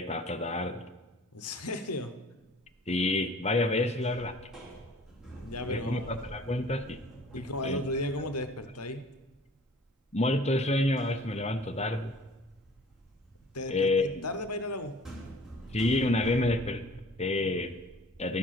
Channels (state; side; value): normal; both; correlation 0.50